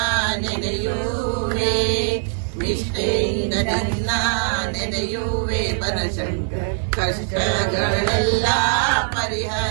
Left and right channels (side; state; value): left; silent; 65 dB below the other